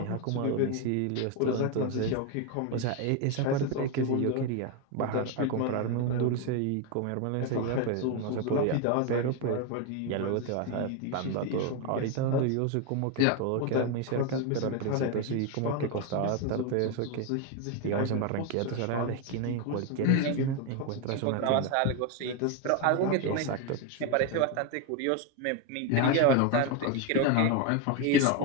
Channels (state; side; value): different; both; correlation 0.02